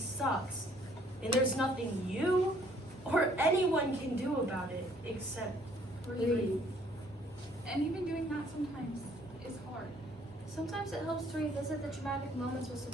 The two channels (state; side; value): normal; both; correlation 0.62